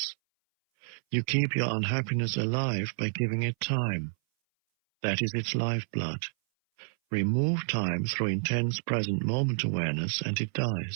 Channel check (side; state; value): left; silent; 58 dB below the other